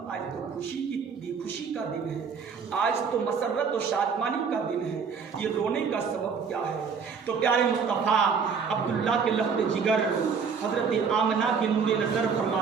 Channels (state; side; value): quieter; left; 5.9 dB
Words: تو خوشی کا دن ہے، آج تو مسرت و شادمانی کا دن ہے، یہ رونے کا سبب کیا ہے؟ تو پیارے مصطفیٰ عبداللہ کے لفظ جگر حضرت آمنہ کے نور نظر